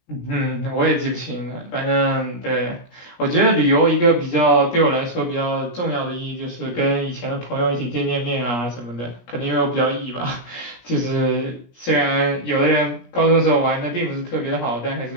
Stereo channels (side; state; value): right; late; 17 ms